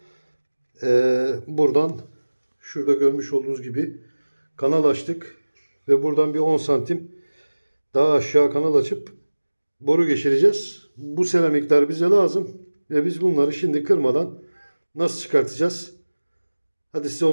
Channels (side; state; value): both; inverted; correlation -1.00